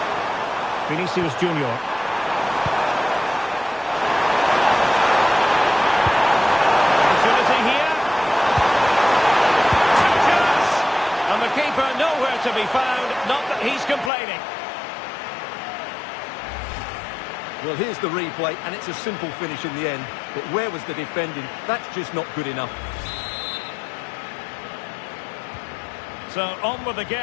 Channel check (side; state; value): right; drops out; at 14.1 s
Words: Vinicius Junior. Opportunity here. Touches! And the keeper nowhere to be found. Not that he's complaining. Well, here's the replay, and it's a simple finish in the end. But where was the defending? That's just not good enough. So, on with the